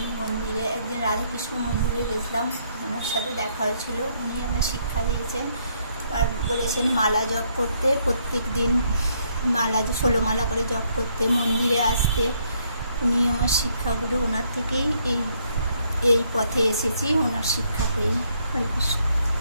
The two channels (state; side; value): inverted; both; correlation -0.71